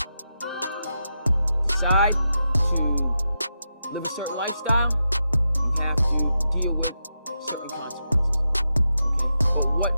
decide to live a certain lifestyle, you have to deal with certain consequences. Okay? But what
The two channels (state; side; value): inverted; both; correlation -0.87